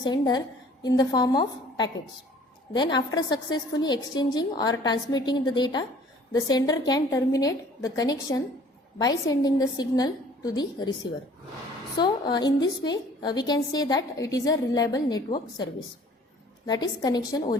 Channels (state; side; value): normal; both; correlation 0.53